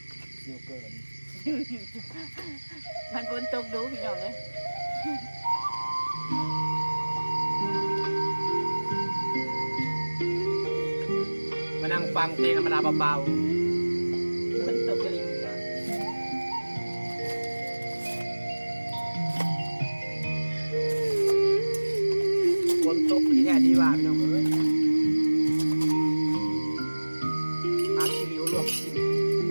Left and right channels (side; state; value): both; inverted; correlation -1.00